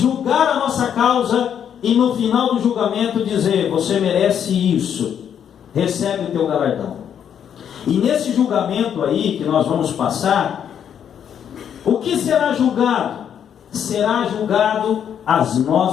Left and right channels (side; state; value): right; quieter; 8.8 dB